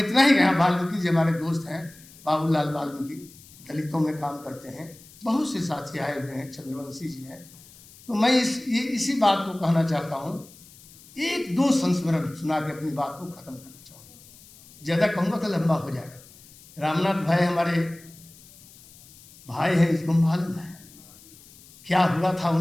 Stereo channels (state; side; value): noise; left; hiss, 23 dB below the sound